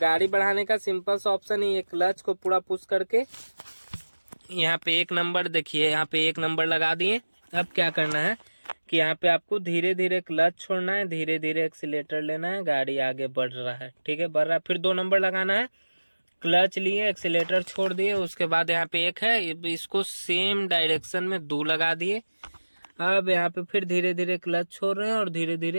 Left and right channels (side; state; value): both; inverted; correlation -1.00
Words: बढ़ाने का सिंपल सा ऑप्शन है, ये क्लच को पूरा पुश करके यहाँ पे 1 नंबर, देखिए यहाँ पे 1 नंबर लगा दिए। अब क्या करना है कि यहाँ पे आपको धीरे धीरे क्लच छोड़ना है, धीरे धीरे एक्सीलेटर लेना है, गाड़ी आगे बढ़ रहा है, ठीक है, बढ़ रहा है। फिर 2 नंबर लगाना है, क्लच लिए, एक्सीलेटर छोड़ दिए, उसके बाद यहाँ पे 1 है, इसको सेम डायरेक्शन में 2 लगा दिए। अब यहाँ पे फिर धीरे धीरे क्लच छोड़ रहे हैं और धीरे